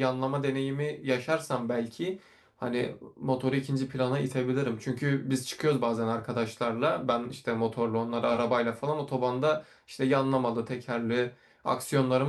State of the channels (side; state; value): both; identical; correlation 1.00